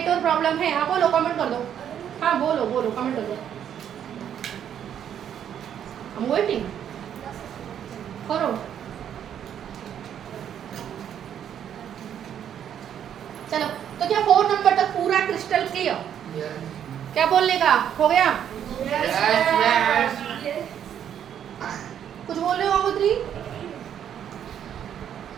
प्रॉब्लम है? हाँ बोलो, कमेंट कर दो। हाँ बोलो कमेंट कर दो। I'm waiting. करो। चलो, तो क्या 4 नंबर तक पूरा क्रिस्टल क्लियर? क्या बोलने का हो गया? कुछ बोल रहे हो गंगोत्री?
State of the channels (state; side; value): quieter; left; 9.4 dB